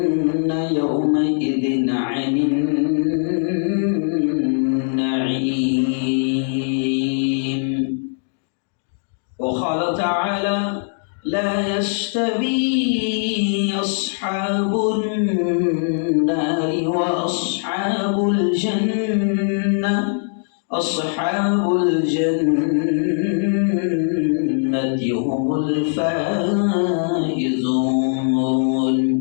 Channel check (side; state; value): right; silent; digital silence